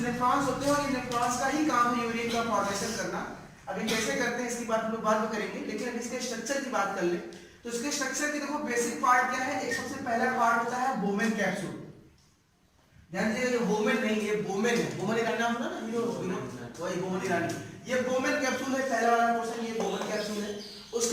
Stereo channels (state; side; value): identical; both; correlation 1.00